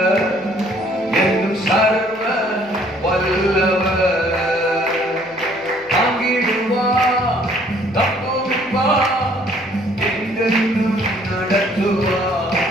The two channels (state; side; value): noise; left; hum, 27 dB below the sound